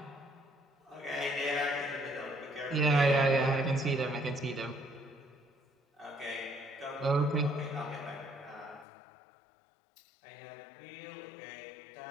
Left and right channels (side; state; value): right; drops out; at 8.8 s